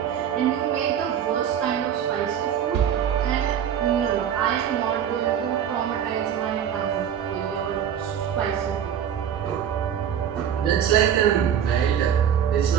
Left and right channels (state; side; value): quieter; left; 9.1 dB